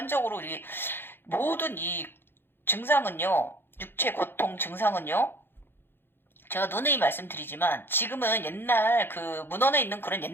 우리 모든 이 증상은요. 육체 고통 증상은요. 제가 누누이 말씀드리지만 지금은 옛날 문헌에 있는 그런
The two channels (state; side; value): late; right; 0.10 ms